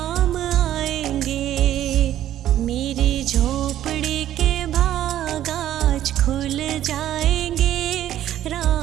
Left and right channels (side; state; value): left; quieter; 12.2 dB